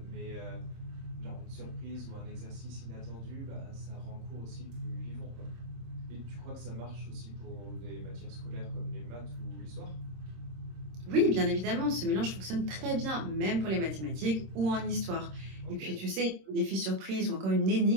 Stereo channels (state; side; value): late; left; 26 ms